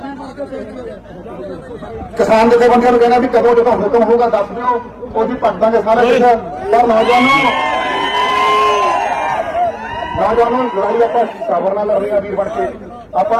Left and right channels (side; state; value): both; identical; correlation 1.00